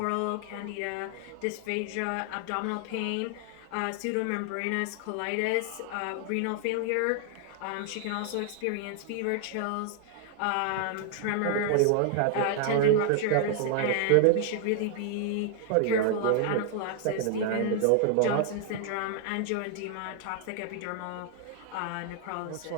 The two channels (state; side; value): different; both; correlation 0.00